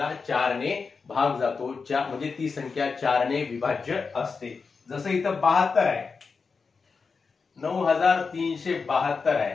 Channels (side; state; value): right; quieter; 4.9 dB